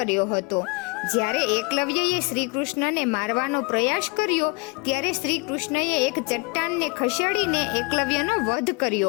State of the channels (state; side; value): quieter; right; 28.6 dB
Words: હતો. જ્યારે એકલવ્યએ શ્રી કૃષ્ણને મારવાનો પ્રયાસ કર્યો ત્યારે શ્રી કૃષ્ણએ એક ચટ્ટાનને ખસેડીને એકલવ્યનો વધ